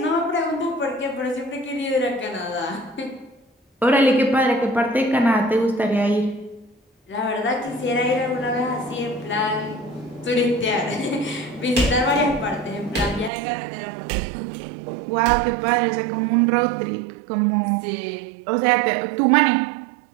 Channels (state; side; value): drops out; left; at 13.3 s